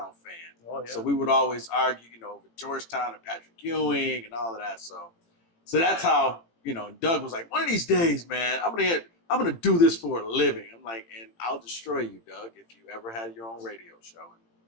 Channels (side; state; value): right; late; 18 ms